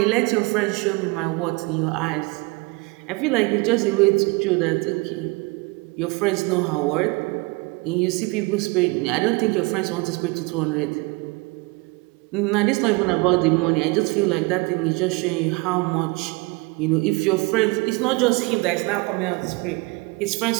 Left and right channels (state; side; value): quieter; left; 26.2 dB